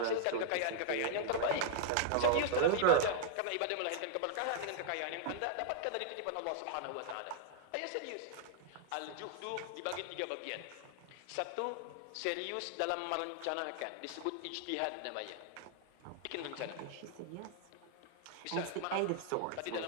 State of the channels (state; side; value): different; both; correlation -0.01